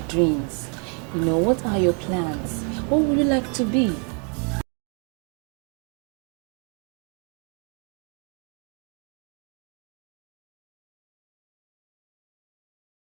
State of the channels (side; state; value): left; quieter; 39.9 dB